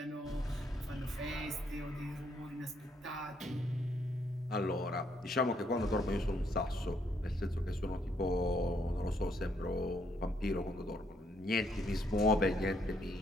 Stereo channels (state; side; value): normal; both; correlation 0.72